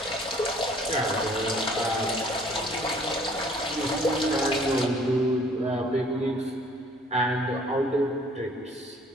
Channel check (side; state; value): both; normal; correlation 0.56